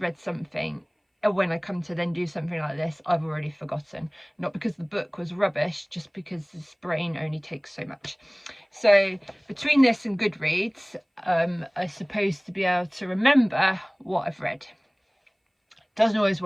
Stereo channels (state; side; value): identical; both; correlation 1.00